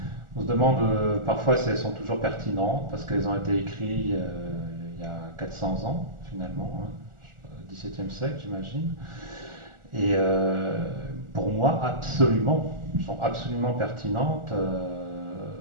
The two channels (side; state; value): left; late; 1.4 ms